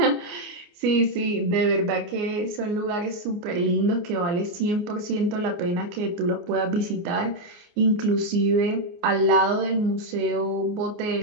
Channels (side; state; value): left; late; 29 ms